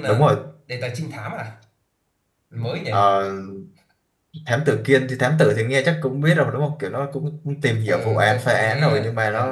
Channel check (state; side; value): identical; both; correlation 1.00